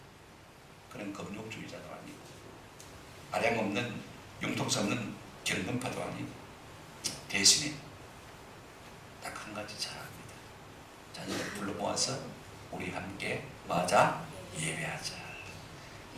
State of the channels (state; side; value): identical; both; correlation 1.00